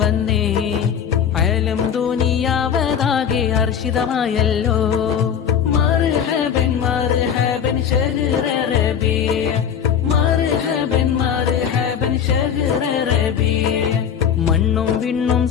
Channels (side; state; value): right; quieter; 8.2 dB